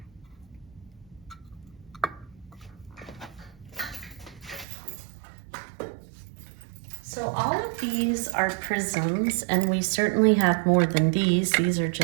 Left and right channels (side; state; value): left; drops out; at 4.7 s